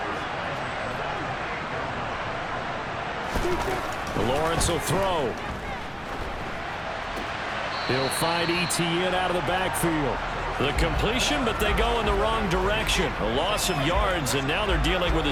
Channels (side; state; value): both; identical; correlation 1.00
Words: Lawrence will throw. He'll find Etienne out of the backfield. The completion, but they go in the wrong direction. A loss of yards, and now they're dealing with a